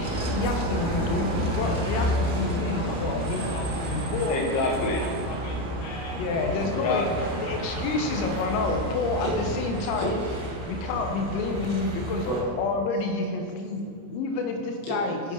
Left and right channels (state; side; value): late; right; 29 ms